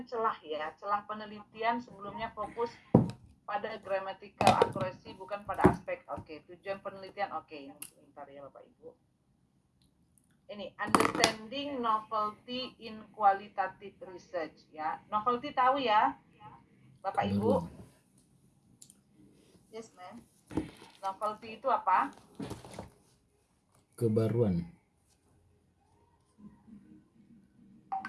celah ya. Celah penelitian sebelumnya fokus pada grammatical accuracy, bukan pada aspek. Oke, tujuan penelitian. Oke, ini sebentar ya Bapak Ibu. Ini understanding novelty in qualitative research ya. Novelty tahu ya Bapak Ibu? Yes, ma'am. Novelty itu apa? Kebaruan.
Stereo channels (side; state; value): both; identical; correlation 1.00